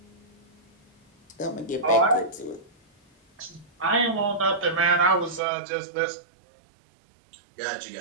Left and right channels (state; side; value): drops out; left; at 5.4 s